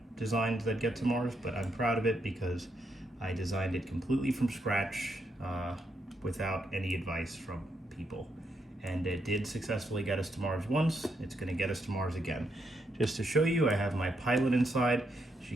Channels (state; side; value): normal; both; correlation 0.79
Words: designs that get to Mars, but I'm proud of it because I designed it completely from scratch without any advice from people. And it did successfully get us to Mars once. It's going to get us to Mars again. Just to show you, I have my pilot inside. She